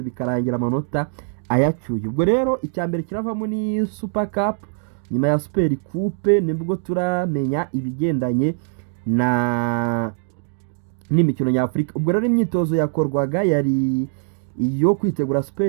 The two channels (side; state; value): left; silent; 58 dB below the other